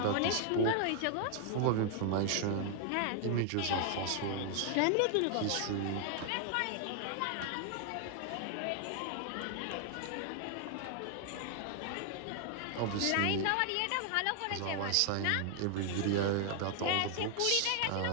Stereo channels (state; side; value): different; both; correlation 0.00